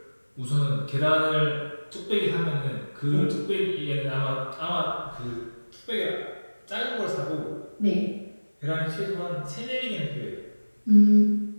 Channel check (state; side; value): inverted; both; correlation -1.00